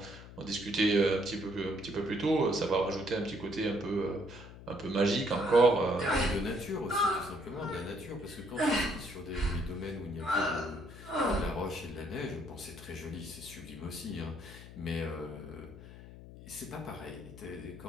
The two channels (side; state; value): left; noise; hum, 15 dB below the sound